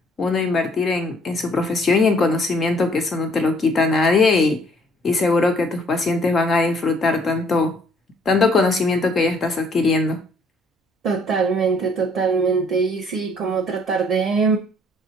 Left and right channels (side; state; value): both; normal; correlation 0.62